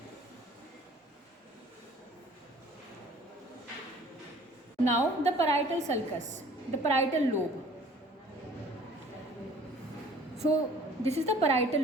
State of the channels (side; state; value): both; normal; correlation 0.52